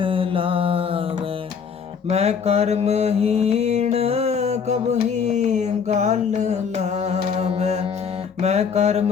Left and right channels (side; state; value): right; quieter; 6.5 dB